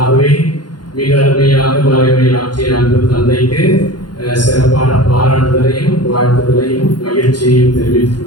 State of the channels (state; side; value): late; right; 0.71 ms